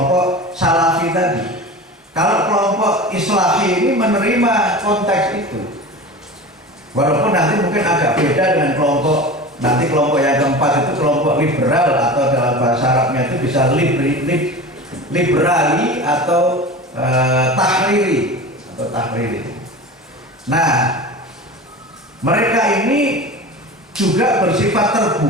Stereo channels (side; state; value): both; normal; correlation 0.32